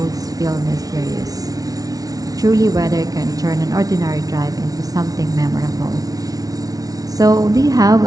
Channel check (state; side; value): late; left; 0.18 ms